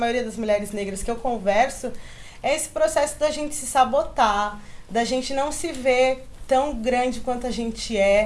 das mulheres negras que eu converso, é esse processo da gente se sabotar, da gente não se ver tão grande quanto a gente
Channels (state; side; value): identical; both; correlation 1.00